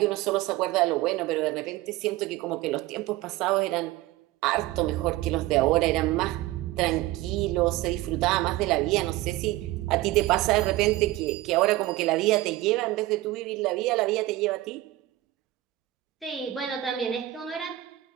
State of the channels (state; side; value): quieter; left; 16.6 dB